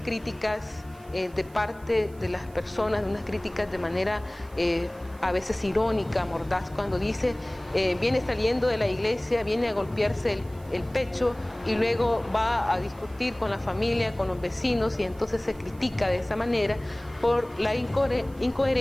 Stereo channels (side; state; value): right; noise; hiss, 27 dB below the sound